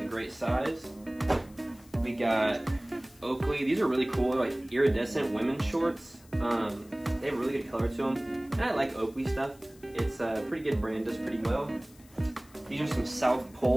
great size. We got Oakley. These are really cool. They're like iridescent women's shorts. They have a really good color to them. And I like Oakley stuff. It's a pretty good brand, does pretty well. These are some South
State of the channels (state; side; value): noise; left; hiss, 26 dB below the sound